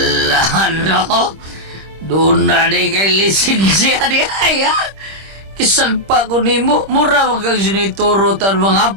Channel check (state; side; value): late; left; 26 ms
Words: no? Doon na di kay lisensya di ay, ha? Kisag pa ko nimo, mura mo kang sinituro tan